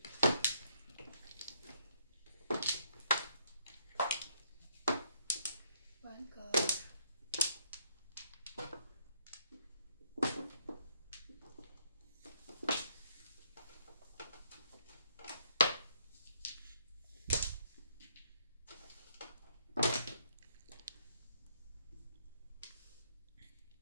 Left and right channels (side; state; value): both; inverted; correlation -0.71